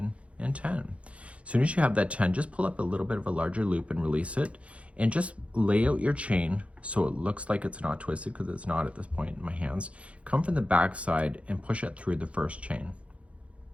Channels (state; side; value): late; left; 0.062 ms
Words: and 10. As soon as you have that 10, just pull up a little bit of a larger loop and release it, and just lay out your chain so it looks like it's not twisted, because it's not at this point in my hands. Come from the back side and push it through the first chain,